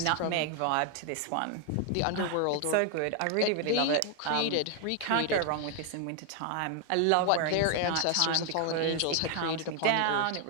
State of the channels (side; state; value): both; different; correlation 0.00